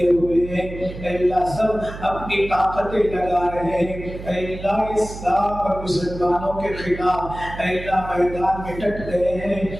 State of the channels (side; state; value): right; noise; hum, 11 dB below the sound